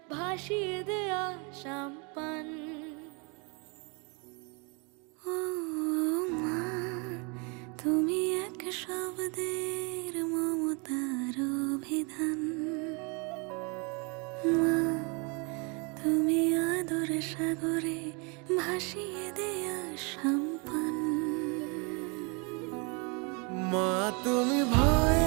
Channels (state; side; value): quieter; left; 32.4 dB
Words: ভাসিয়ে দেয়া সাম্পান। ও মা, তুমি এক শব্দের মমতার অভিধান। মা, তুমি আদর সাগরে ভাসিয়ে দেয়া সাম্পান। মা, তুমি